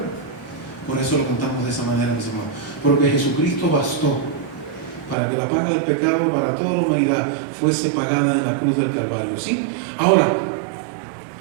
Por eso lo cantamos de esa manera, mis amados, porque Jesucristo bastó para que la paga del pecado para toda la humanidad fuese pagada en la cruz del Calvario. ¿Sí? Ahora,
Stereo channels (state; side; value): drops out; left; at 5.2 s